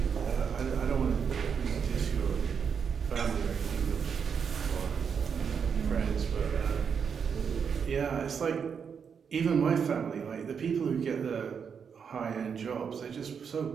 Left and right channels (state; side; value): quieter; left; 6.7 dB